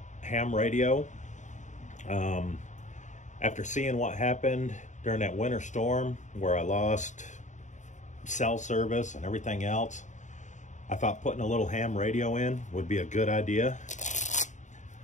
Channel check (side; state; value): right; late; 0.35 ms